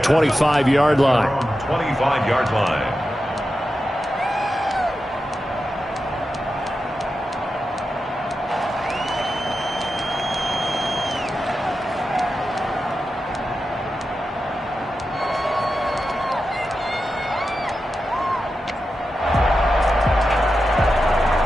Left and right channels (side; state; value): both; normal; correlation 0.90